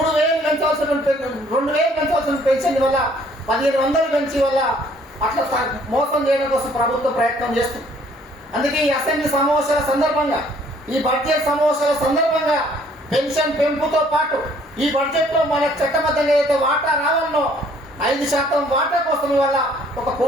పెంచవలసిన 2,000 పెంచవలసిన పెన్షన్ వల్ల 1,500 పెంచి వల్ల అట్లా మోసం చేయడం కోసం ప్రభుత్వం ప్రయత్నం చేస్తుంది. అందుకే ఈ అసెంబ్లీ సమావేశాల సందర్భంగా, ఈ బడ్జెట్ సమావేశాల సందర్భంగా పెన్షన్ పెంపుతో పాటు ఈ బడ్జెట్ లో మన చట్టబద్ధంగా అయితే వాటా రావాలనో 5% వాటా కోసం వల్ల ఒక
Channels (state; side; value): normal; both; correlation 0.60